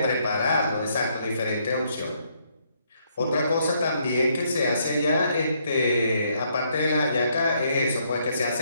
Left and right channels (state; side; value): inverted; both; correlation -0.72